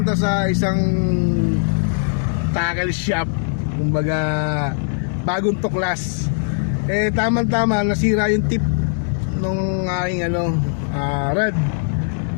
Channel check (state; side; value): silent; right; digital silence